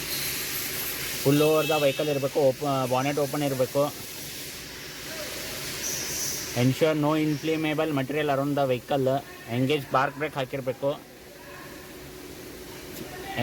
ಫುಲ್ ಓವರ್ ದ ವೆಹಿಕಲ್ ಇರಬೇಕು, ಬಾನೆಟ್ ಓಪನ್ ಇರಬೇಕು. Ensure no inflammable material around the vehicle. Engage park brake ಹಾಕಿರಬೇಕು.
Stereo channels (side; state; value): both; identical; correlation 1.00